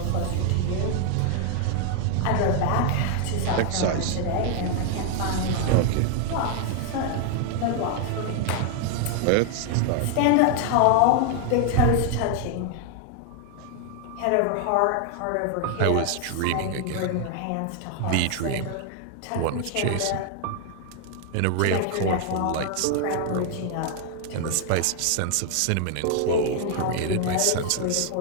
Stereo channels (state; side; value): different; both; correlation 0.00